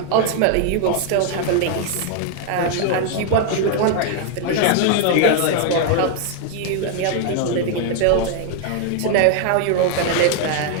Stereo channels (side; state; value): both; different; correlation 0.00